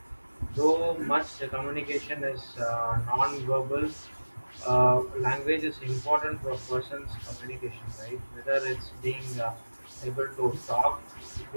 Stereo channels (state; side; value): inverted; both; correlation -1.00